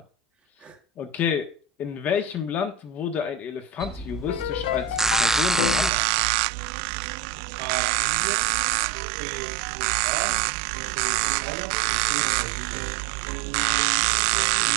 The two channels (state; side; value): drops out; left; at 5.9 s